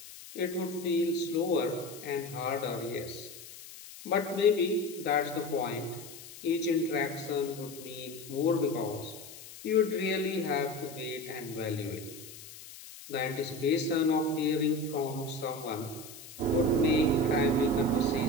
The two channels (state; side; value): noise; left; hiss, 15 dB below the sound